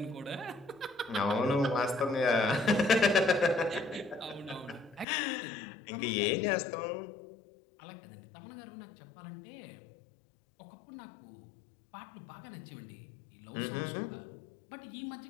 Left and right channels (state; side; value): drops out; right; at 5.1 s